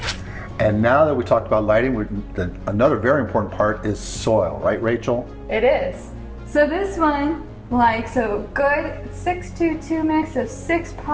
And now that we talked about lighting, another very important part is soil, right, Rachel? It is. So this one, like, so good 6-2-2 mix of 6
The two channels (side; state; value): both; identical; correlation 1.00